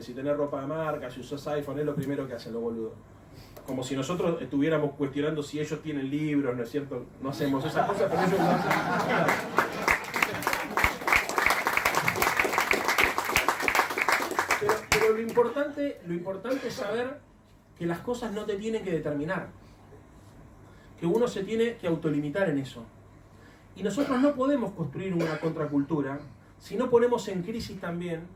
Si tenés ropa de marca, si usás iPhone, es lo primero que hacen los boludos. Como si nosotros estuviéramos cuestionando si ellos tienen libros, ¿no es cierto? No hacemos esas cosas, pero ellos lo hacen. Pero lo importante es saber que las cosas no te tienen que determinar. Que uno se tiene que autolimitar en eso. Y nosotros no podemos construir una contracultura si no ponemos en crisis también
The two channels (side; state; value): both; identical; correlation 1.00